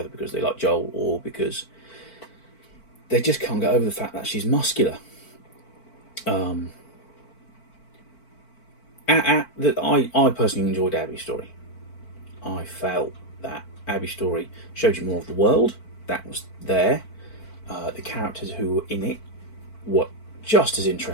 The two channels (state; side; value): late; right; 4.5 ms